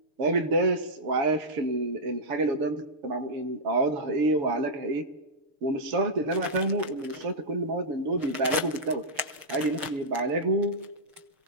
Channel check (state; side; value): late; left; 6.5 ms